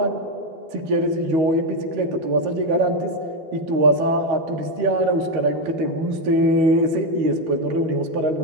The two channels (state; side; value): late; left; 13 ms